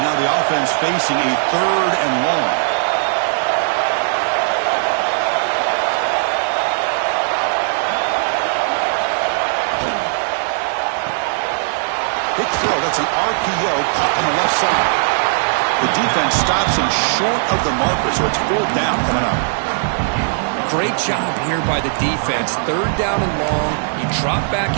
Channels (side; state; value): left; silent; 64 dB below the other